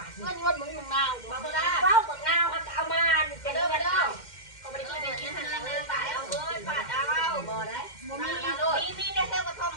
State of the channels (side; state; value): right; late; 2.1 ms